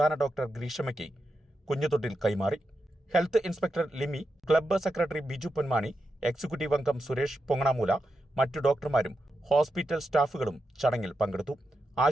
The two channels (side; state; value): both; normal; correlation 0.87